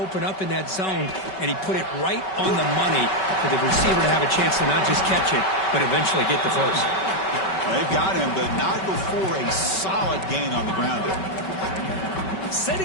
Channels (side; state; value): right; late; 5.3 ms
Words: up in that zone, and he put it right on the money for the receiver to have a chance to not just catch it, but eventually get the first. Well, they've got him, but not before a solid gain on the ground there.